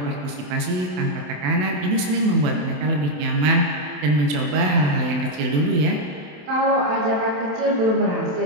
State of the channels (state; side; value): late; left; 27 ms